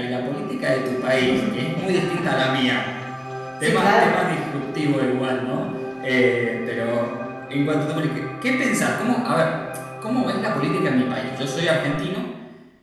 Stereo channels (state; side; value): identical; both; correlation 1.00